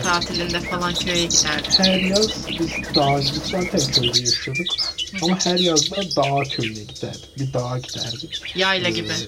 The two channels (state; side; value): identical; both; correlation 1.00